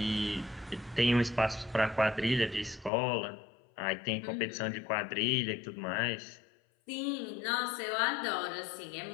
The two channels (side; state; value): right; drops out; at 2.9 s